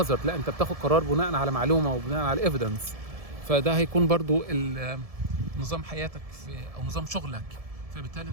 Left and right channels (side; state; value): left; late; 1.7 ms